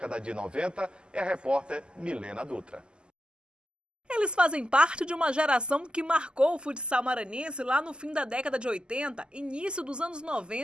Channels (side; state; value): left; late; 0.048 ms